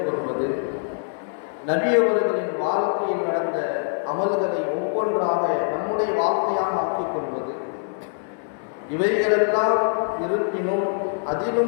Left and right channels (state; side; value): silent; right; 63 dB below the other